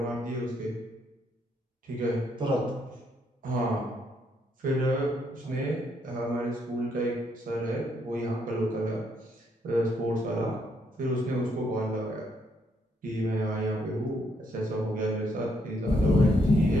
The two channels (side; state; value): both; normal; correlation 0.73